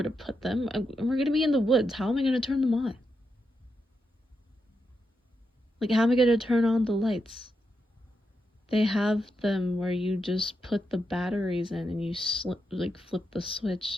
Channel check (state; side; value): normal; both; correlation 0.85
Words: to put them. We're gonna be in the woods. How am I gonna turn them on? Like, how am I gonna turn on the lights? They have them where you just put the batteries in and you flip the